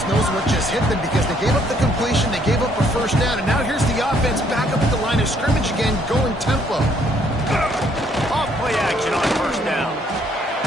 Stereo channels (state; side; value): normal; both; correlation 0.67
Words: knows what just hit them because they gave up the completion, they gave up a first down, and now here's the offense back up at the line of scrimmage again, going tempo. Off play action on first down.